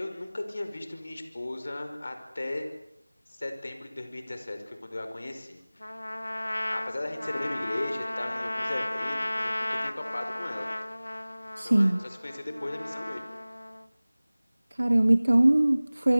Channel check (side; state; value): both; inverted; correlation -0.99